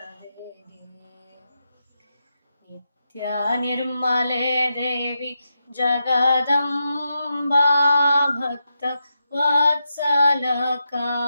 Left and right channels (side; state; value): both; inverted; correlation -0.86